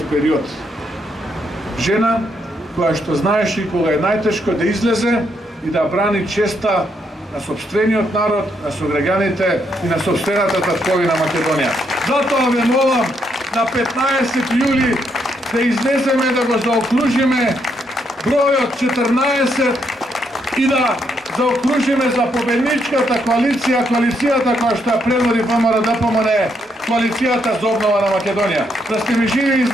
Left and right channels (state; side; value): normal; both; correlation 0.76